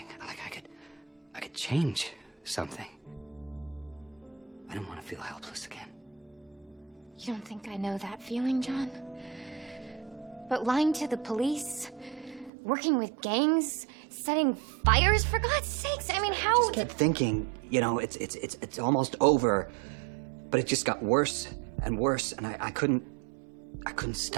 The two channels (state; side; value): drops out; left; at 12.5 s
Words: like I could change something. I don't want to feel helpless again. You don't think I know that feeling, John? But lying to the police, working with gangs, setting fires, for God's sakes, I mean, how... I just kept thinking, it's almost over, but it just got worse and worse, and I couldn't